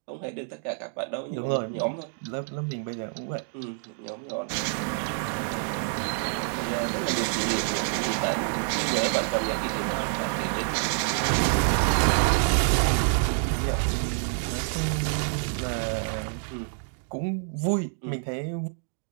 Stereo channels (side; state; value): left; silent; digital silence